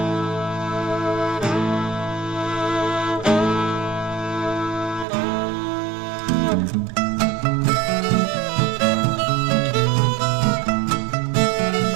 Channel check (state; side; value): drops out; left; at 5.1 s